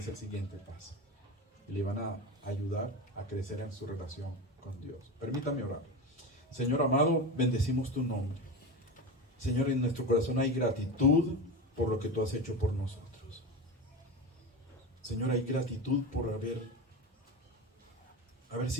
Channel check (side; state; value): both; normal; correlation 0.23